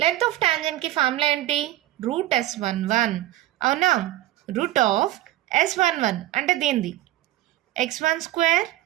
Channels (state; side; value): quieter; left; 15.0 dB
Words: లెంత్ ఆఫ్ టాంజెంట్కి ఫార్ములా ఏంటి? √S11. అవునా? రూట్ ఆఫ్ S11 అంటే దీనిది x1 square